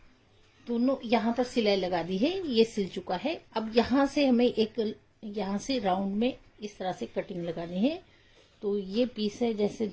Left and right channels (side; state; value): both; identical; correlation 1.00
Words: दोनों यहाँ पर सिलाई लगा दी है, ये सिल चुका है। अब यहाँ से हमें एक यहाँ से राउंड में इस तरह से कटिंग लगानी है। तो ये पीस है, जैसे